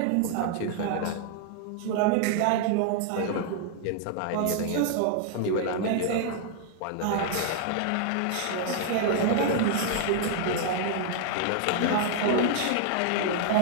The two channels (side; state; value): both; different; correlation -0.01